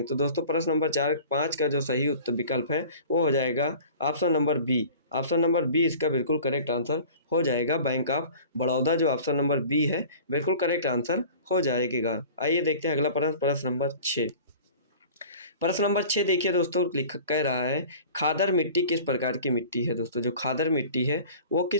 तो दोस्तों प्रश्न नंबर 5 का जो सही उत्तर विकल्प है वो हो जाएगा option number B. Option number B इसका बिल्कुल करेक्ट आंसर हो जाएगा, बैंक ऑफ बड़ौदा जो ऑप्शन नंबर बी है बिल्कुल करेक्ट आंसर हो जाएगा। आइए देखते हैं अगला प्रश्न, प्रश्न नंबर 6। प्रश्न नंबर 6 देखिए दोस्तों, लिख कह रहा है खादर मिट्टी किस प्रकार की मिट्टी है। दोस्तों जो खादर मिट्टी है वो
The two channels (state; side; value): inverted; both; correlation -0.43